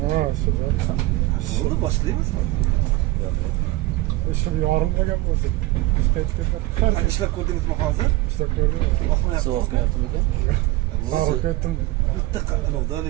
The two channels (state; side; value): quieter; left; 17.9 dB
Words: Ha, shu. Oldu, başlayayım mı? Shu yorimga gap bo'lsa. Biz qaytib ketdik. Hani işlep koydunuz mu hazır? İşte ko'rdim. Bakma yaptım. So'q qilyaptimi ekan? Sog'ib ketdim. Bitti oldu